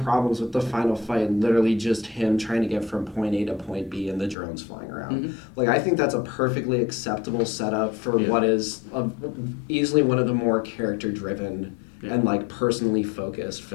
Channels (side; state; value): right; drops out; at 4.4 s